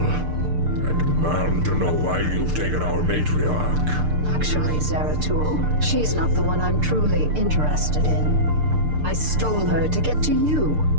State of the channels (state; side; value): late; left; 6.7 ms